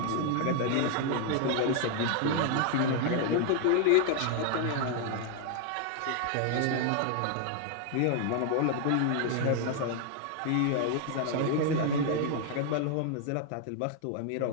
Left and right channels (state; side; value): different; both; correlation 0.00